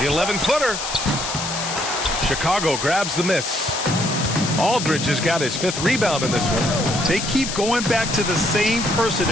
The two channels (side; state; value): left; noise; hiss, 5 dB below the sound